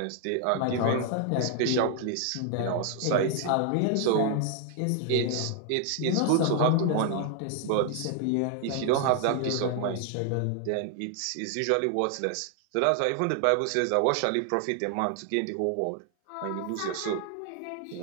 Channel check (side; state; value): both; different; correlation 0.00